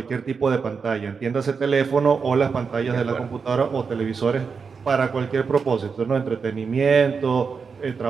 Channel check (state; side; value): quieter; left; 5.5 dB